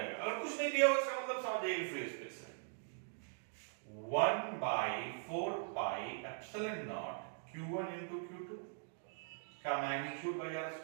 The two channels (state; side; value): silent; left; digital silence